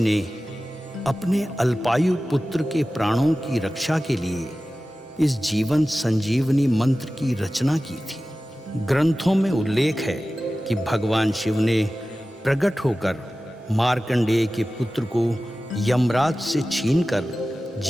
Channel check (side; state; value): both; normal; correlation 0.96